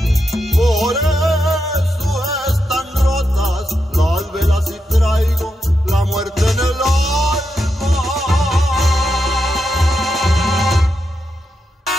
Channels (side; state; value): both; normal; correlation 0.85